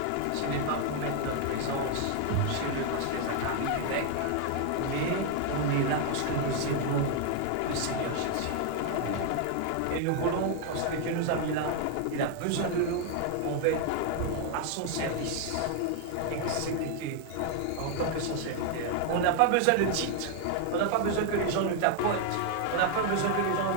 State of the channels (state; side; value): different; both; correlation 0.00